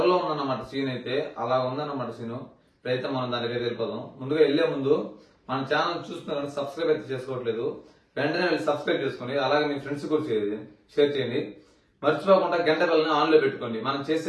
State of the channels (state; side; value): identical; both; correlation 1.00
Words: లో ఉందన్నమాట సీన్ అయితే. అలా ఉందన్నమాట సీన్. ఇప్పుడైతే మనం దానికి వెళ్ళిపోదాం. ముందుగా వెళ్లే ముందు మన ఛానల్ చూస్తున్నారు, సబ్స్క్రైబ్ అయితే చేసుకోవట్లేదు, వెంటనే వెళ్ళి సబ్స్క్రైబ్ చేసుకోండి. అలాగే మీ ఫ్రెండ్స్ కూడా షేర్ చేయండి. మర్చిపోకుండా గంట బెల్ని ఆన్ లో పెట్టుకోండి. మనం